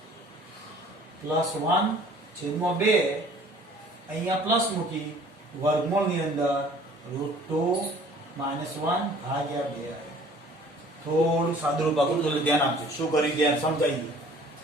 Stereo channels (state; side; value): normal; both; correlation 0.52